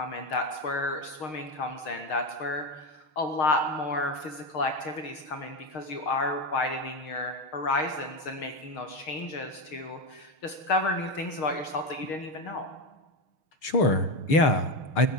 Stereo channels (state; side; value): late; right; 6.5 ms